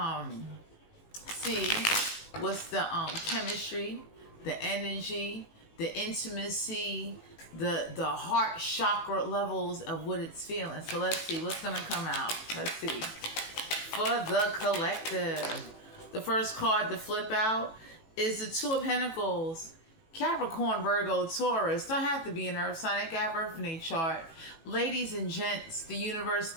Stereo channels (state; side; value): late; right; 18 ms